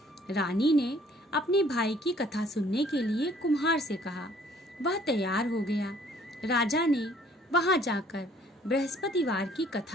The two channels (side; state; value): both; normal; correlation 0.59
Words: रानी ने अपने भाई की कथा सुनने के लिए कुम्हार से कहा। वह तैयार हो गया। राजा ने वहां जाकर बृहस्पतिवार की